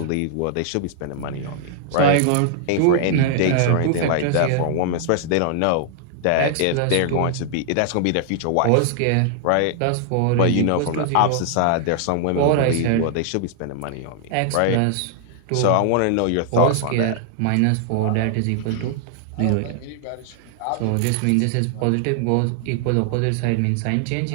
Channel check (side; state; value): both; different; correlation 0.00